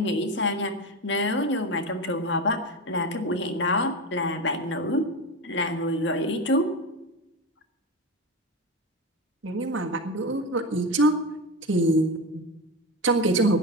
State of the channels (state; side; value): normal; both; correlation 0.20